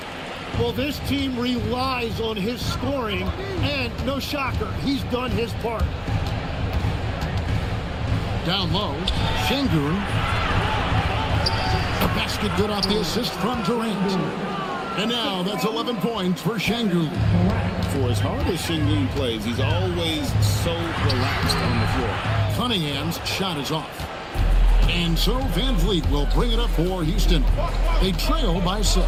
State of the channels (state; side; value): identical; both; correlation 1.00